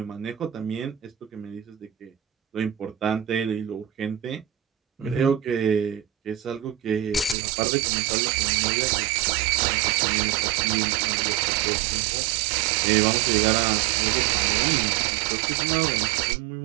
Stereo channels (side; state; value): left; drops out; at 7.4 s